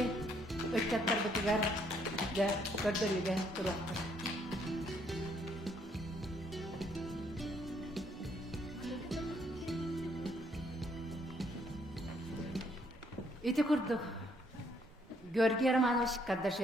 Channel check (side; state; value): both; normal; correlation 0.69